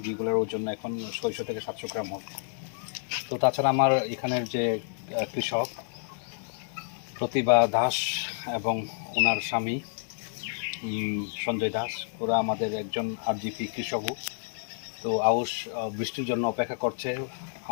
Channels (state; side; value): silent; right; digital silence